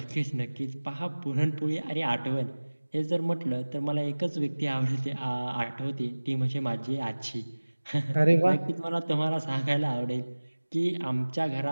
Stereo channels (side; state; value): both; inverted; correlation -1.00